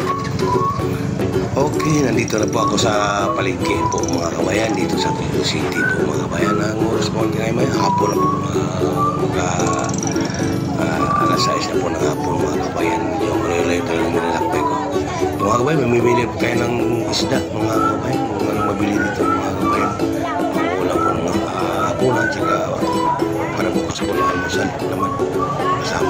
Okay, nandito na po ako sa palengke po mga kababayan, dito sa Toledo City po mga kababayan. Ang oras po ngayon may hapon na po alas 6 na po ng hapon mga kababayan. Yung malayo-layo talagang nilalakbay ko. Mga kababayan, mamimili po tayo ng isda mga kababayan. Kung anong mabili dito mga kababayan. Wala po ng hapunan, tsaka para bukas po na almusal naman.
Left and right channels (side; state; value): both; identical; correlation 1.00